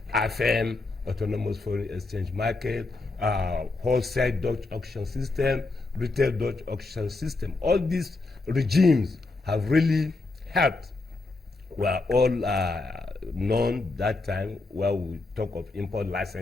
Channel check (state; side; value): quieter; right; 3.5 dB